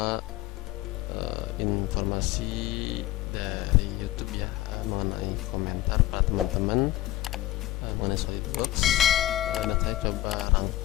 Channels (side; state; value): right; quieter; 15.1 dB